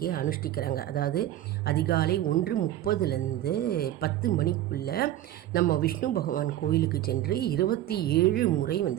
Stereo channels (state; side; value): quieter; left; 13.4 dB